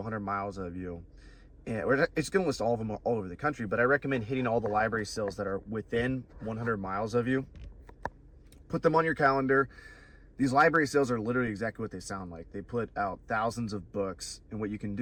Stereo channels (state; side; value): identical; both; correlation 1.00